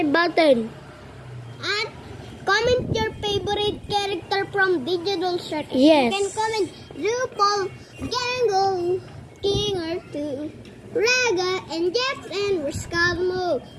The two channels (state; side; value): identical; both; correlation 1.00